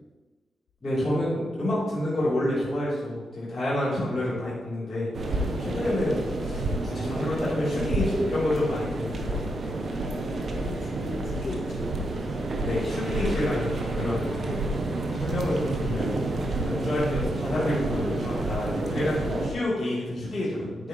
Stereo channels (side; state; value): both; normal; correlation 0.82